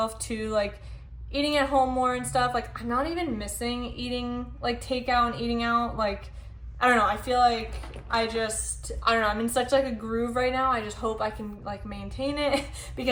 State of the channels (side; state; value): both; identical; correlation 1.00